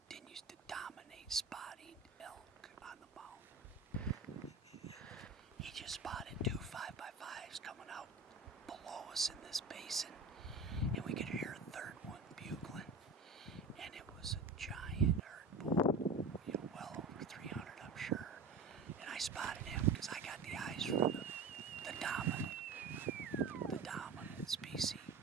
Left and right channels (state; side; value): quieter; left; 3.9 dB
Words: to dominate spotting elk on the mountain. He just spotted 2 5x5s coming out below us in this basin, and we could hear a third one bugling, and it was a giant herd bull, well over 300, I'm sure. And I spotted him because I got the eyes for the dominant species.